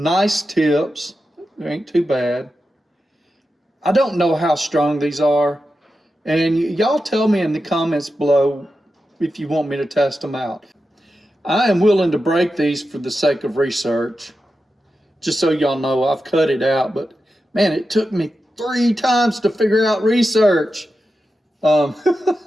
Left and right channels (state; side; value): normal; both; correlation 0.90